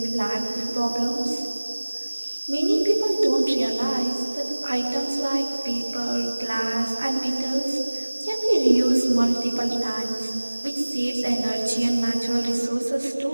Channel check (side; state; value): both; inverted; correlation -1.00